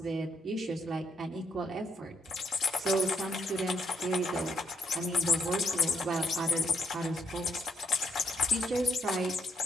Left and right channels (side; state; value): both; normal; correlation 0.73